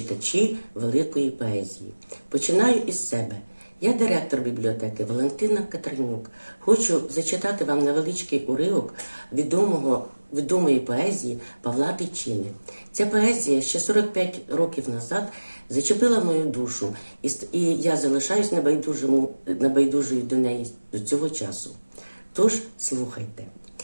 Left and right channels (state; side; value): inverted; both; correlation -1.00